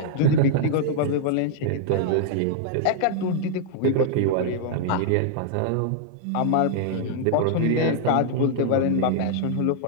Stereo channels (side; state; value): both; different; correlation -0.01